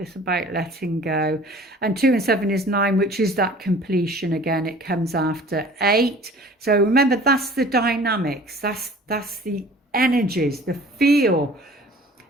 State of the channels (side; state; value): both; normal; correlation 0.47